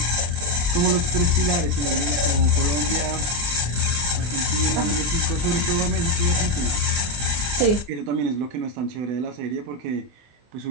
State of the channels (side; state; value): left; late; 24 ms